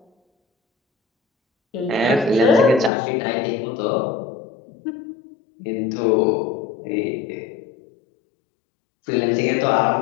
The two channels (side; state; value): right; drops out; at 2.9 s